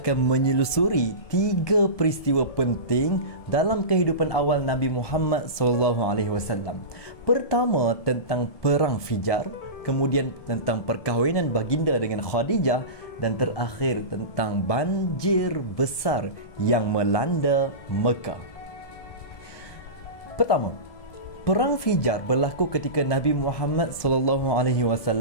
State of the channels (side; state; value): right; late; 1.2 ms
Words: menyelusuri tiga peristiwa penting dalam kehidupan awal Nabi Muhammad SAW. Pertama tentang Perang Fijar, kemudian tentang perkahwinan baginda dengan Khadijah, dan terakhir tentang banjir besar yang melanda Mekah. Pertama, Perang Fijar berlaku ketika Nabi Muhammad